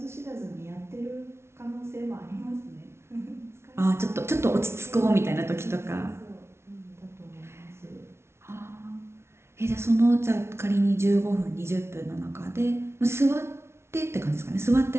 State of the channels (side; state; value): left; late; 0.13 ms